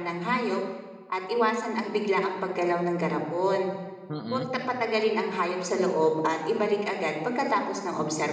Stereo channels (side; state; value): both; identical; correlation 1.00